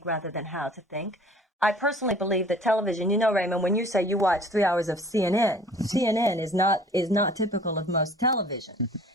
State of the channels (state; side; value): normal; both; correlation 0.50